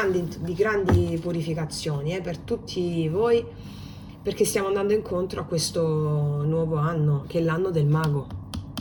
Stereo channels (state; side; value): identical; both; correlation 1.00